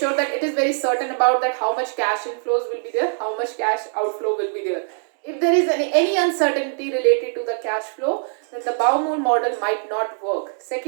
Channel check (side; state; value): left; silent; 61 dB below the other